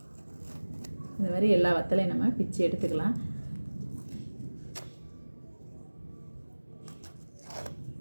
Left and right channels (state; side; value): inverted; both; correlation -1.00